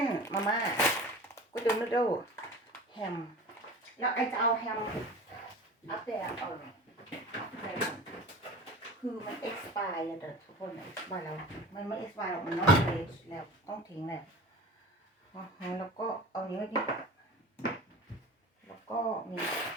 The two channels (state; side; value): normal; both; correlation 0.36